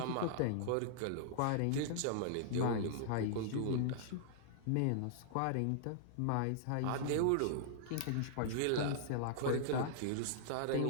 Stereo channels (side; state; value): both; different; correlation -0.01